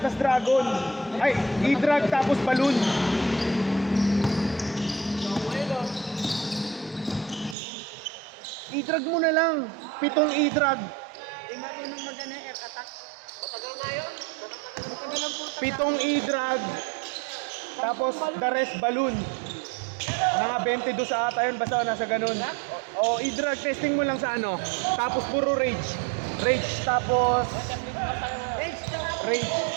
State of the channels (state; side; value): drops out; left; at 7.6 s